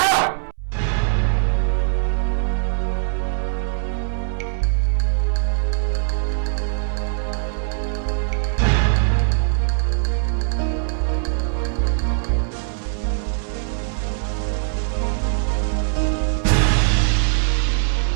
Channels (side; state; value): left; silent; 65 dB below the other